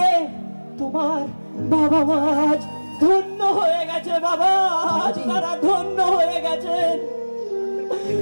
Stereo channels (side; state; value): both; inverted; correlation -1.00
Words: তোমার বাবা মা আজ ধন্য হয়ে গেছে বাবা, আজ তারা ধন্য হয়ে গেছে।